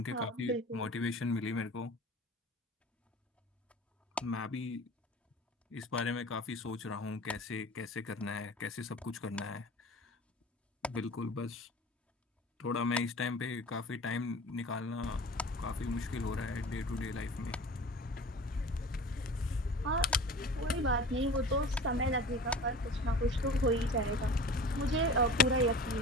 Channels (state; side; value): normal; both; correlation 0.38